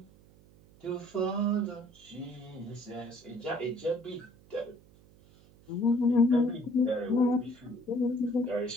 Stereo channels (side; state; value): right; noise; hum, 26 dB below the sound